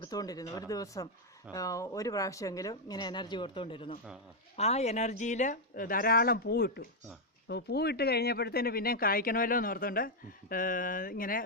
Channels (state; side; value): normal; both; correlation -0.01